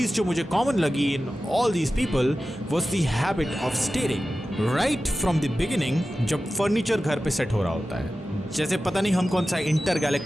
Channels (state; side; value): normal; both; correlation 0.94